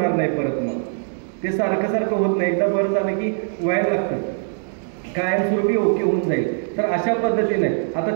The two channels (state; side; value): silent; left; digital silence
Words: नाही परत. मग ते सारखं सारखं होत नाही, एकदा बरं झालं की व्हायला लागतं, कायमस्वरूपी ओके होऊन जाईल. तर अशा पद्धतीने